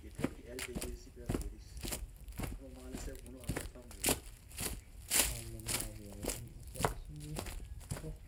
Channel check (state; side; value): identical; both; correlation 1.00